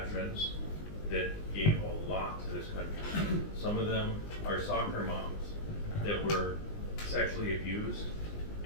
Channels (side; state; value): right; late; 19 ms